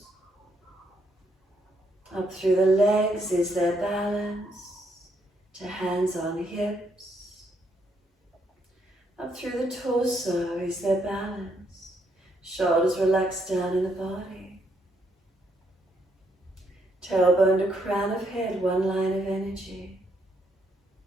Up through the legs, is there balance? To hands on hips. Up through the torso, is there balance? Shoulders relaxed down in the body. Tailbone to crown of head, one line of energy.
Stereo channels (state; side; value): normal; both; correlation 0.74